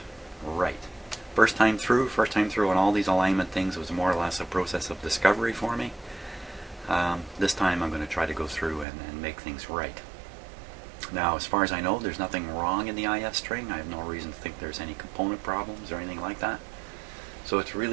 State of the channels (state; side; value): drops out; left; at 8.8 s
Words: right. First time through on all these alignment things was more or less a process of discovery for me. This time I'm going to try to go through and make things right. Now, as far as I know, there's nothing wrong in the IF string. I have no reason to think there's any component problems or anything like that. So it's